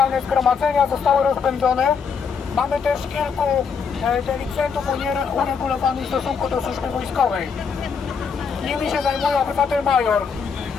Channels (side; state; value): right; quieter; 6.0 dB